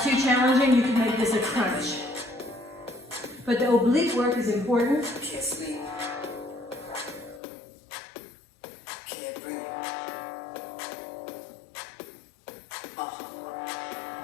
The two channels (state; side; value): drops out; right; at 7.4 s